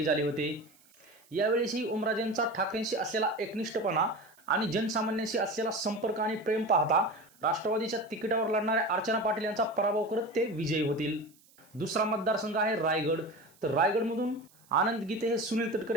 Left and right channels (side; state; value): right; noise; hiss, 29 dB below the sound